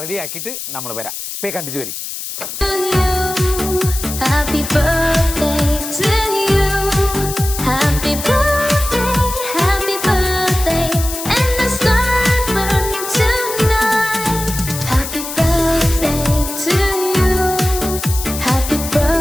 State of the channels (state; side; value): noise; left; hiss, 7 dB below the sound